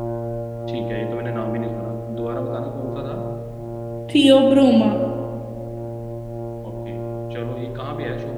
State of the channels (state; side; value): identical; both; correlation 1.00